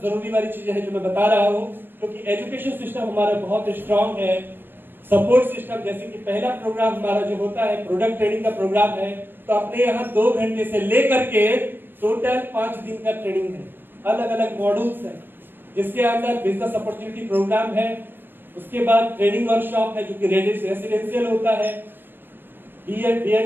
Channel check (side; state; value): left; late; 0.096 ms